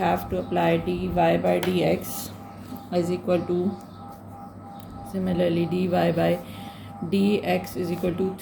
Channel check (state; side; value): identical; both; correlation 1.00